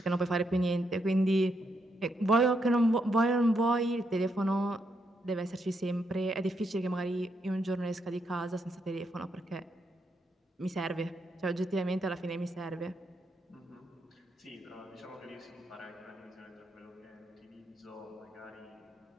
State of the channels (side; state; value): both; normal; correlation 0.79